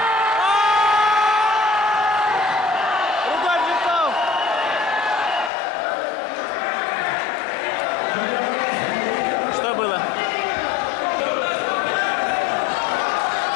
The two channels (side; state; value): right; drops out; at 5.5 s